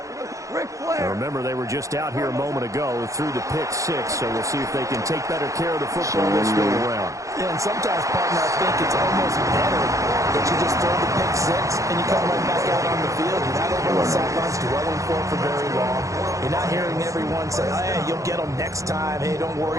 Now remember, they were just out here a moment ago through the pick six, so we'll see if they can take better care of the football this go around. Yeah, and sometimes, partner, I think it's almost better that you just throw the pick six and you come right back out on the field. You're not over on the sidelines dwelling for very long. You're not hearing everyone say, hey, you'll get them next time. Hey, don't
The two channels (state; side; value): late; left; 0.15 ms